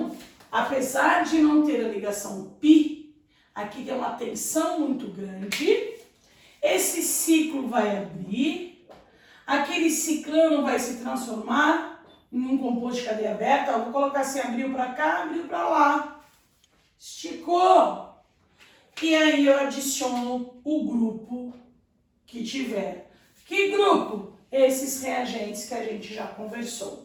apesar de não ter a ligação π, aqui tem uma tensão muito grande, esse ciclo vai abrir, aquele ciclano vai se transformar em um composto de cadeia aberta. Eu vou colocar assim: abriu para cá, abriu para lá, esticou. E aí eu adiciono o grupo que tiver. Que grupo? Esses reagentes que a gente já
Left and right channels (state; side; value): identical; both; correlation 1.00